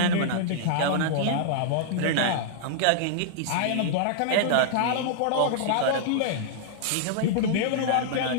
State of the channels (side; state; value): both; different; correlation -0.01